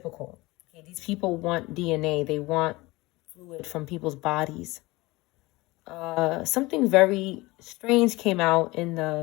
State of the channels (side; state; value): right; quieter; 21.5 dB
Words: Okay, these people want DNA. They want fluid from people's bodies. Something very strange came out in